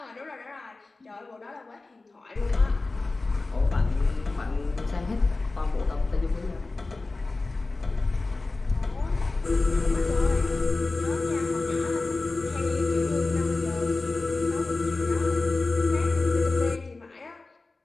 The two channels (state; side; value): quieter; right; 3.4 dB